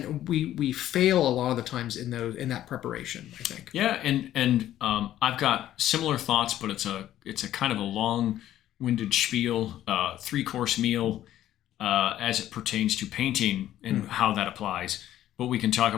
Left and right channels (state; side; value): quieter; right; 12.6 dB